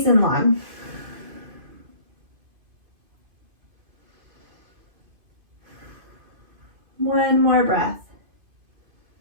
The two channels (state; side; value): late; left; 2.5 ms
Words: and long. One more breath.